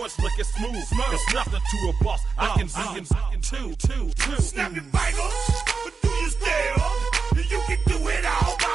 it's looking smooth. It's nothing to a boss. I can two. Snap your fingers, but do you still? You can do it all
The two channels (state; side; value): quieter; left; 4.9 dB